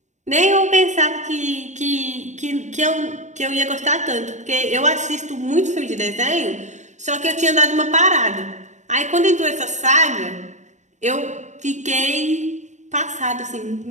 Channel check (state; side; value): late; left; 0.34 ms